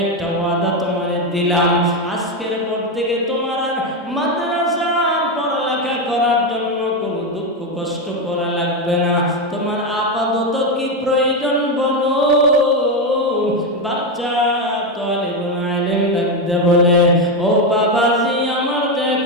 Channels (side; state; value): both; normal; correlation 0.10